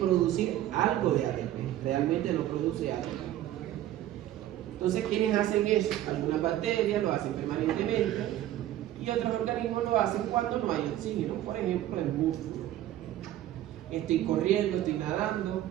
algo de ATP, realmente no produce ATP. Entonces, ¿quiénes hacen eso? Algunas bacterias lo hacen permanentemente y otros organismos lo hacen cuando no hay oxígeno, por ejemplo el músculo. Estoy corriendo, estoy nadando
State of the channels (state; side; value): quieter; left; 13.2 dB